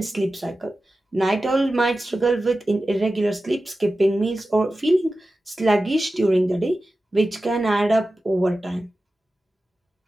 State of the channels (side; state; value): both; normal; correlation 0.94